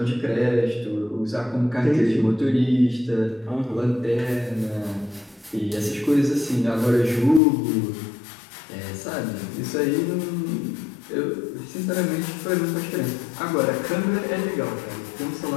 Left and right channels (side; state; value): right; drops out; at 7.4 s